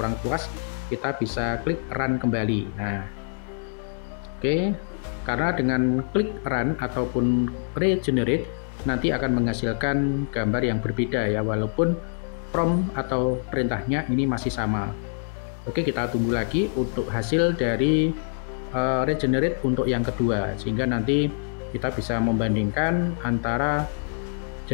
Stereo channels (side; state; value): right; silent; digital silence